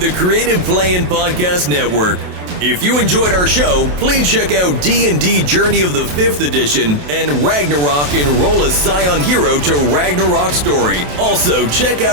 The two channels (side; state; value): left; late; 27 ms